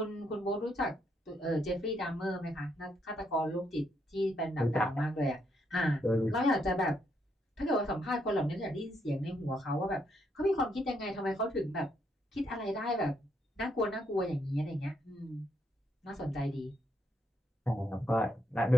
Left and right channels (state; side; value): normal; both; correlation 0.76